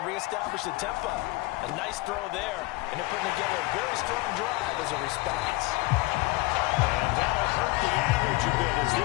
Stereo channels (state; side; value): quieter; right; 21.5 dB